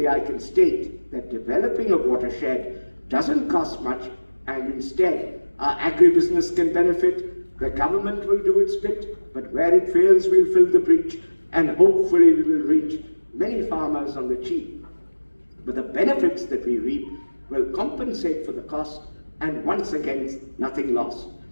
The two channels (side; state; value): both; inverted; correlation -1.00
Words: I can state that developing a watershed doesn't cost much, and instead our agribusiness can benefit, the government will do its bit, but where it fails we'll fill the breach, and hopefully we will reach many farmers on the cheap. But the benefits that we reap will compensate for the cost, and once again, nothing lost.